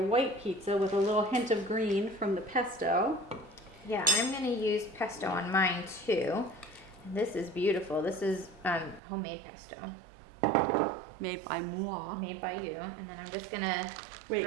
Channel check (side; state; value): left; drops out; at 9.0 s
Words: pizza with a little hint of green from the pesto. Yeah, I'm gonna use pesto on mine too. And this is beautiful. This is homemade pesto. Made by moi. Made by you. And then I'm just gonna Wait,